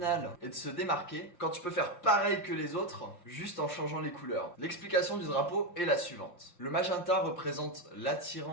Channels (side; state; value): right; late; 5.7 ms